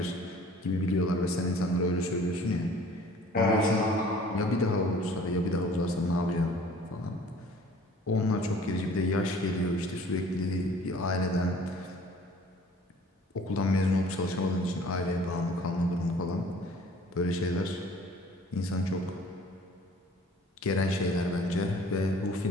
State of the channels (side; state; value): both; normal; correlation 0.51